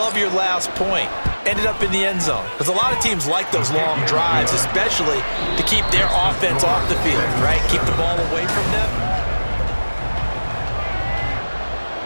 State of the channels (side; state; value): both; inverted; correlation -1.00